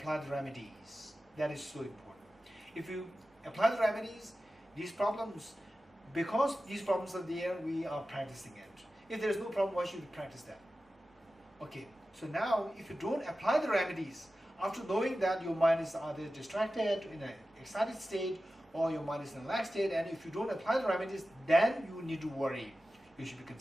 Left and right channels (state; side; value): normal; both; correlation 0.94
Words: the remedies. That is so important. If you apply the remedies, these problems, because these problems are there, we are practicing it. If there is no problem, why should we practice that? Okay, so now if you don't apply the remedies, after knowing that your mind is either distracted, in an excited state, or your mind is in a relaxed state, and if you don't apply the remedies, then you need to worry. You should be